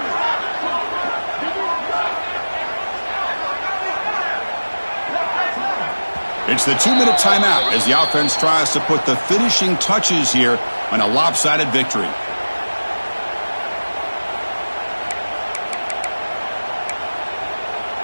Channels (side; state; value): both; inverted; correlation -1.00